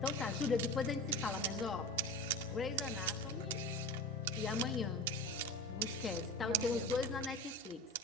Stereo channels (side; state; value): both; normal; correlation 0.30